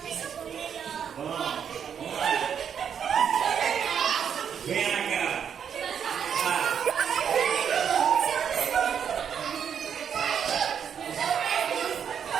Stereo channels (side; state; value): left; quieter; 7.9 dB